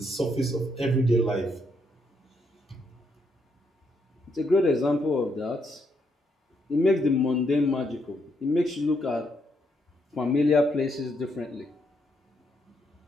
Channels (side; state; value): both; normal; correlation 0.76